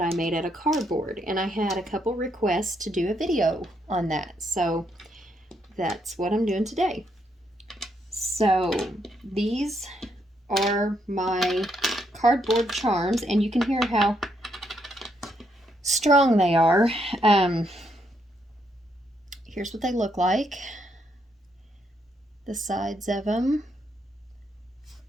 made out of cardboard, and I had a couple requests to do a video on that, so that's what I'm doing today. So these are my cardboard charms, and you can hear how strong they are. Here's what they look like. The sides of them.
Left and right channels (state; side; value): normal; both; correlation 0.76